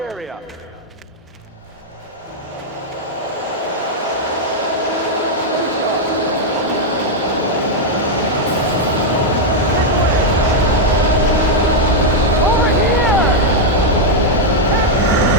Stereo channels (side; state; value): both; normal; correlation -0.01